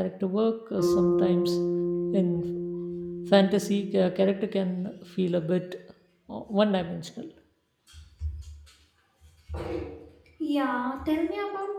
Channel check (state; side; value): identical; both; correlation 1.00